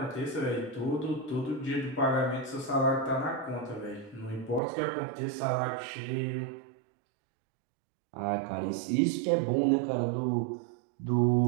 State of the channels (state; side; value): drops out; left; at 4.6 s